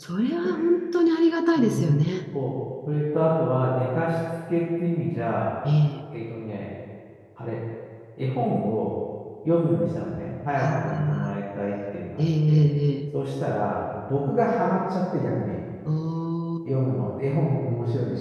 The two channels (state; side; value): identical; both; correlation 1.00